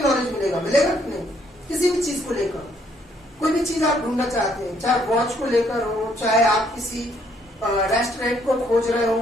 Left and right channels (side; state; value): both; normal; correlation 0.68